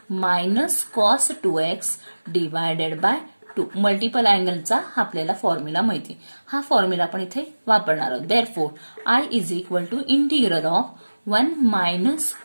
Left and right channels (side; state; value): both; inverted; correlation -1.00